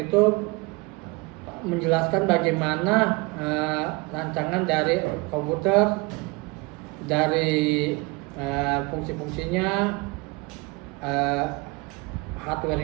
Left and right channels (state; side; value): quieter; left; 26.4 dB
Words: itu menjelaskan bagaimana rancangan dari komputer, dari fungsi-fungsinya,